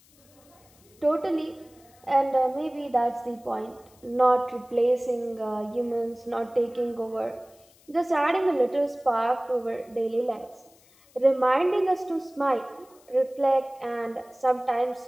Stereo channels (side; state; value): left; noise; hiss, 29 dB below the sound